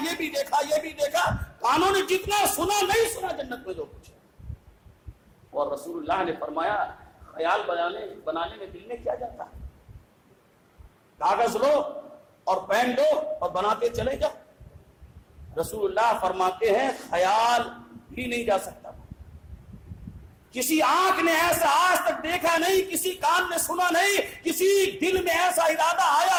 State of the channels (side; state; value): both; identical; correlation 1.00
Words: یہ بھی دیکھا، یہ بھی دیکھا۔ کانوں نے جتنا سنا نہیں سنا جنت میں جو کچھ ہے۔ اور رسول اللہ نے فرمایا خیال بنانے میں دل میں کیا جاتا ہے؟ کاغذ لو اور پین لو اور بناتے چلے جاؤ۔ رسول اللہ فرماتے ہیں خیال بھی نہیں جا سکتا، کسی آنکھ نے ایسا آج تک دیکھا نہیں، کسی کان نے سنا نہیں، کسی دل میں ایسا ارادہ آیا